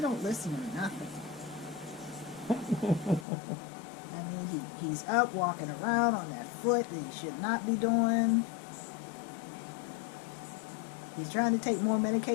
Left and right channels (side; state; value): right; drops out; at 3.2 s